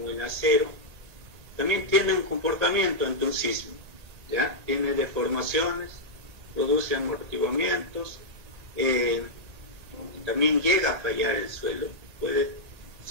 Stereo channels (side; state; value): left; late; 1.9 ms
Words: el acero, también tiene un comportamiento ante un sismo, ¿ya? Tiene deformaciones, produce amortiguamientos, también llega a fallar el suelo, puede